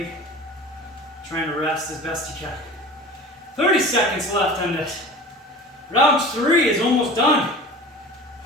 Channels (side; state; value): both; normal; correlation 0.38